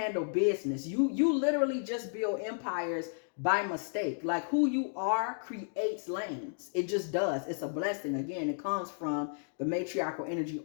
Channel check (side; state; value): right; silent; digital silence